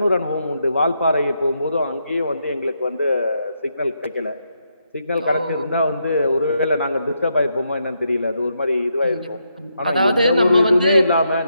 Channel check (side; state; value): both; inverted; correlation -0.80